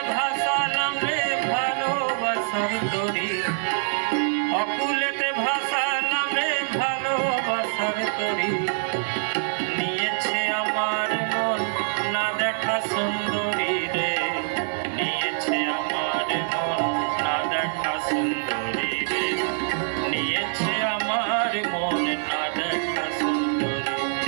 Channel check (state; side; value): silent; left; 62 dB below the other